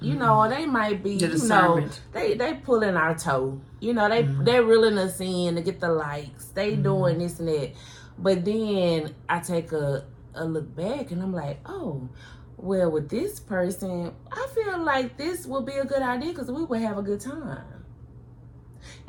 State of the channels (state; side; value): identical; both; correlation 1.00